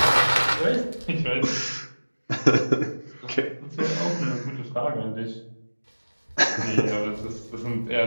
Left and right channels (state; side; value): inverted; both; correlation -1.00